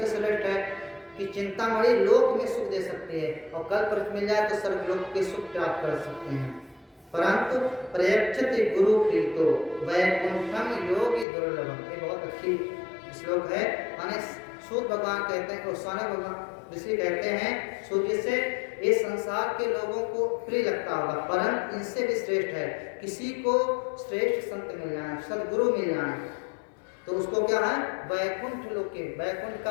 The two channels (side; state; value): right; drops out; at 11.2 s